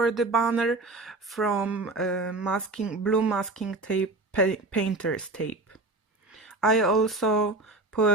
the banner from blue masking tape, painter's tape. I also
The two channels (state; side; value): quieter; left; 3.1 dB